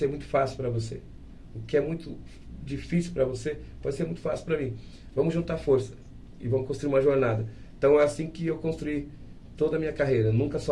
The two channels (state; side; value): identical; both; correlation 1.00